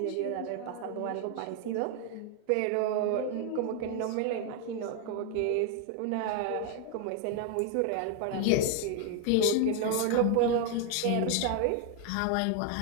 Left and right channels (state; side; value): different; both; correlation 0.01